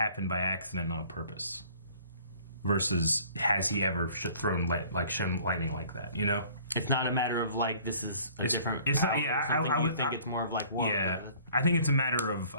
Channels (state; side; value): inverted; both; correlation -0.53